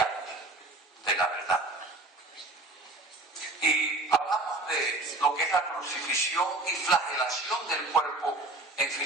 de la verdad. Y hablamos de lo que es la crucifixión y flagelación del cuerpo en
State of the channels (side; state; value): left; quieter; 3.0 dB